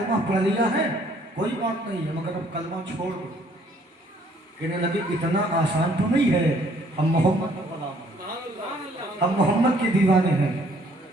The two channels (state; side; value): normal; both; correlation 0.62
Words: पढ़ लिया है कोई बात नहीं है, मगर अब कलमा छोड़ दो। कहने लगे, इतना आसान तो नहीं है, हम मोहम्मद का गुलाम हैं, हम मोहम्मद के दीवाने हैं,